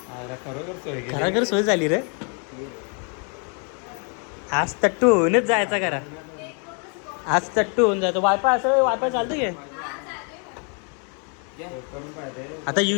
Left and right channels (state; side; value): quieter; right; 39.1 dB